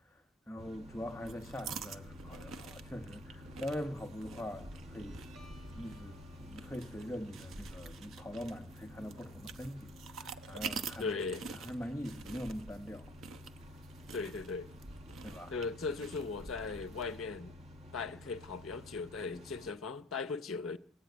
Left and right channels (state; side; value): normal; both; correlation 0.52